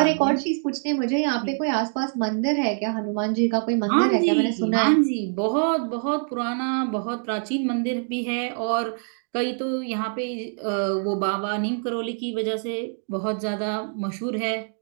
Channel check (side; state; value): left; silent; 56 dB below the other